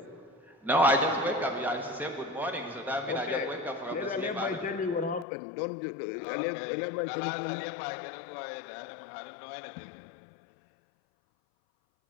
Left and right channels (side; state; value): right; drops out; at 5.2 s